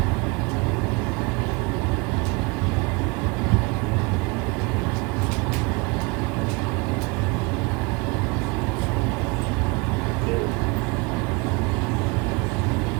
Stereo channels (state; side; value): quieter; left; 27.6 dB